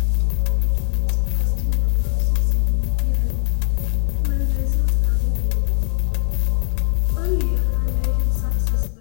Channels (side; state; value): right; silent; digital silence